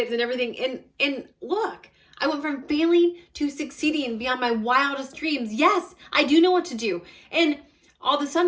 and everything. And look, I went from failing to succeeding beyond my wildest dreams. Yes, I do know what to do. And all of a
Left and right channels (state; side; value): identical; both; correlation 1.00